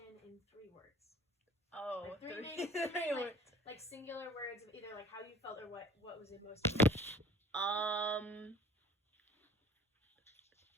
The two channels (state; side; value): normal; both; correlation 0.47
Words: in 3 words? Oh, like three words. Like singular words of either like how you felt or what was it most important?